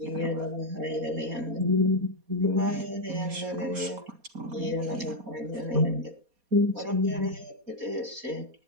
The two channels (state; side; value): late; left; 4.2 ms